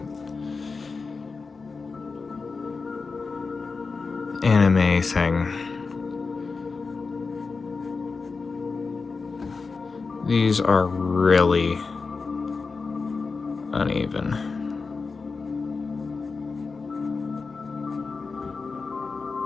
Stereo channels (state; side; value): quieter; right; 4.5 dB